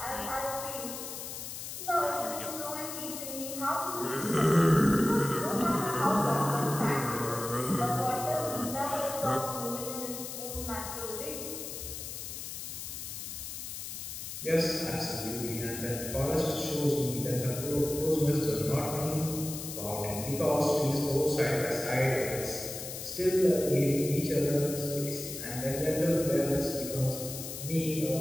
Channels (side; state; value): left; noise; hiss, 8 dB below the sound